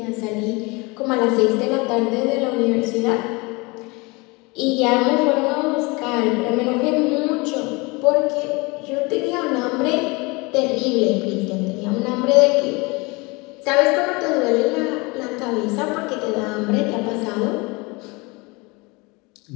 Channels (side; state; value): right; quieter; 26.3 dB